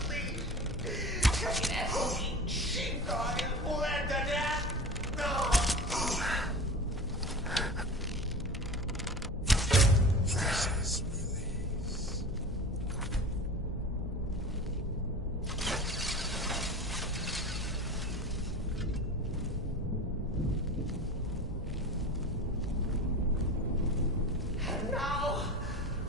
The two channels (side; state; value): both; normal; correlation 0.33